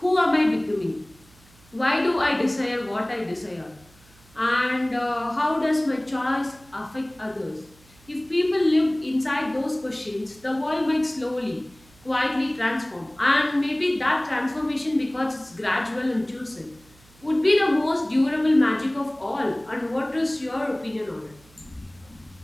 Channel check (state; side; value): noise; right; hum, 28 dB below the sound